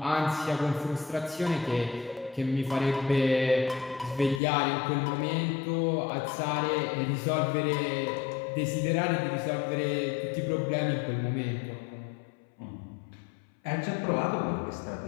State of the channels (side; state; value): right; drops out; at 4.4 s